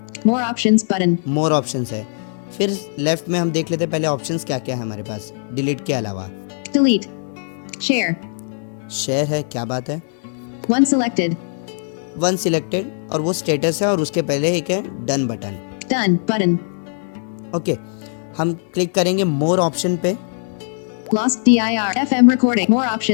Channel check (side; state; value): right; silent; digital silence